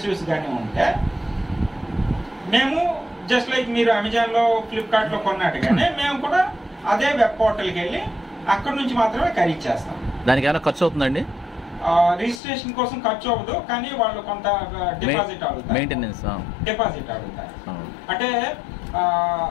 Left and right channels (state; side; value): drops out; right; at 12.4 s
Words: కానీ ఉంటే మేము జస్ట్ లైక్ మీరు అమెజాన్లో, ఫ్లిప్కార్ట్లో కొన్నట్టుగానే మేము కూడా అదే వెబ్ పోర్టల్కి వెళ్ళి అక్కడ నుంచి మాత్రమే ఖరీదు చేస్తాం. దానికి ఏమైనా ఖర్చు అవుతుందండి? రిజిస్ట్రేషన్ కోసం ఖర్చు అవ్వదు, కానీ వాళ్ళు కొంత డిపాజిట్ అడుగుతారు, మెయింటెనెన్స్ డిపాజిట్ అడుగుతారు. అంటే